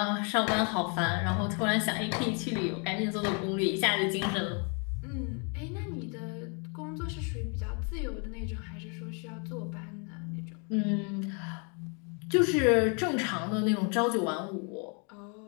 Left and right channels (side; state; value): right; quieter; 36.8 dB